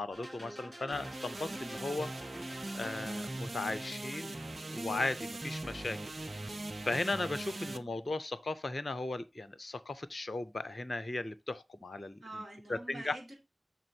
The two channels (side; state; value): both; normal; correlation 0.93